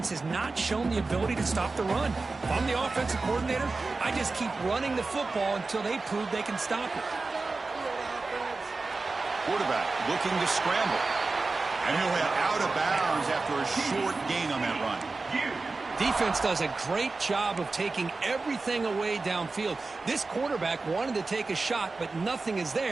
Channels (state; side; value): quieter; left; 3.7 dB